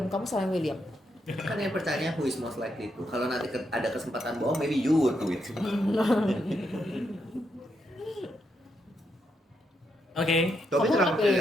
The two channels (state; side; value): normal; both; correlation 0.80